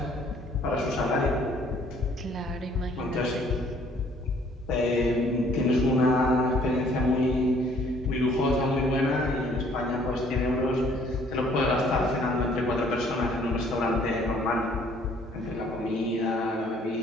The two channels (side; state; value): both; normal; correlation 0.60